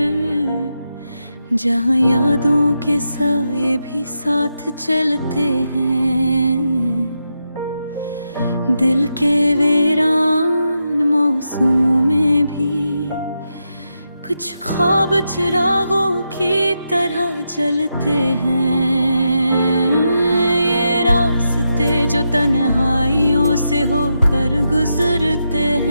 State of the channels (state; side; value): inverted; both; correlation -0.85